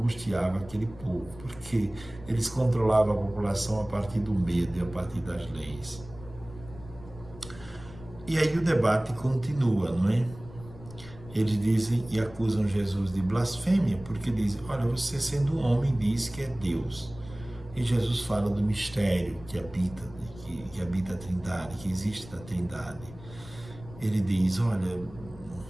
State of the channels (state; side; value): noise; left; rumble, 18 dB below the sound